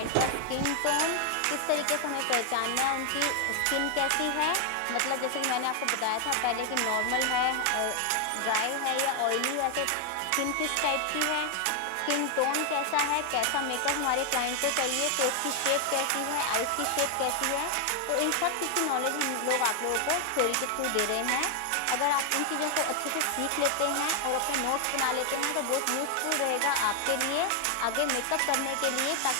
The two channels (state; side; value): different; both; correlation 0.00